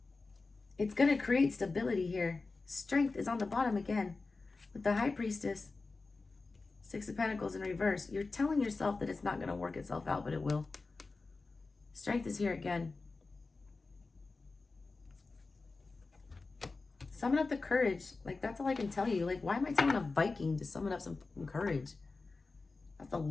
It's going to create stability here. Strength is on the bottom again with the High Priestess. 6 of Pentacles in reverse. You're telling yourself that it's not going to work itself out, but it will. Strength is here again. Summon up the courage. Like, that's all I can tell you. Like, why am I telling a Viking to summon up some courage? That's the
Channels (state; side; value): quieter; right; 3.8 dB